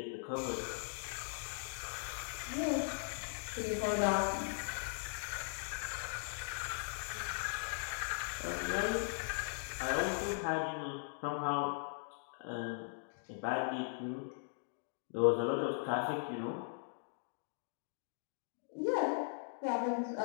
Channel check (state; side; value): silent; right; digital silence